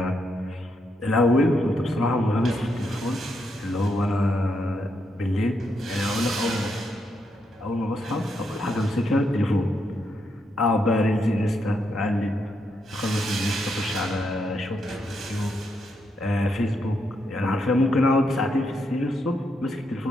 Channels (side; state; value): both; normal; correlation 0.80